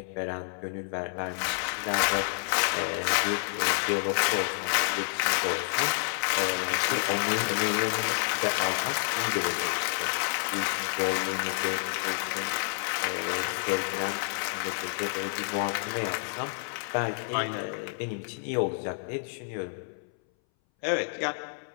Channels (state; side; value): silent; right; 59 dB below the other